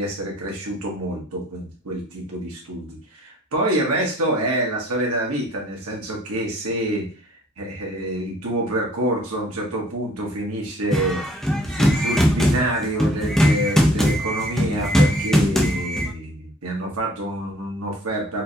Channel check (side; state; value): both; normal; correlation 0.57